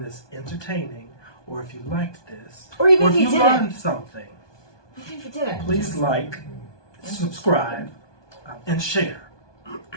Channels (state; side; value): late; right; 1.2 ms